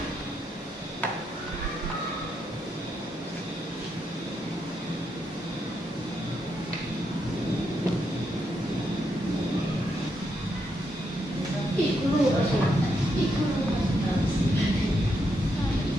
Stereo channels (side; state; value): both; normal; correlation 0.80